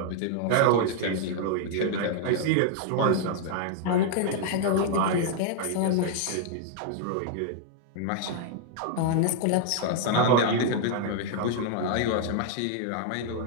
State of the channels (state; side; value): different; both; correlation 0.00